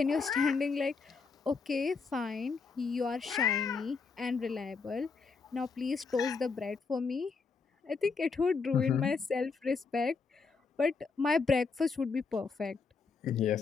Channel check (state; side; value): quieter; right; 4.8 dB